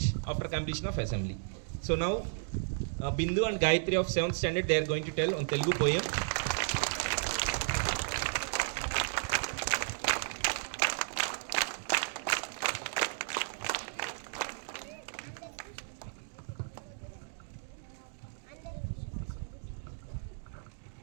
after completion of assembly. So now Bindu and Gayatri of 7th standard, they are going to tell on Telugu poem.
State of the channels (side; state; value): left; silent; digital silence